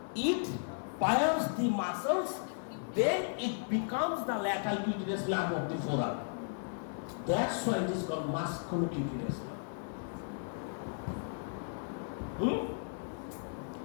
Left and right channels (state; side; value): silent; right; digital silence